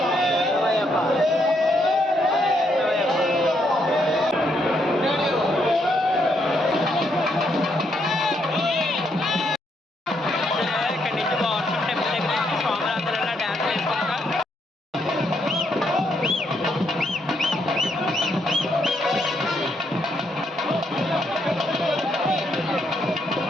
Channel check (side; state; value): both; normal; correlation 0.75